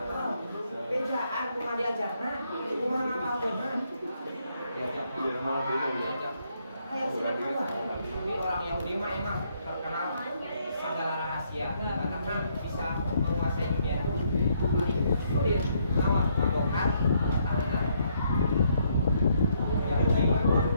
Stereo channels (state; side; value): inverted; both; correlation -0.72